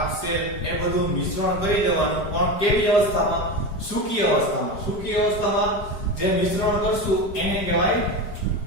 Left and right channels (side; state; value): right; late; 4.9 ms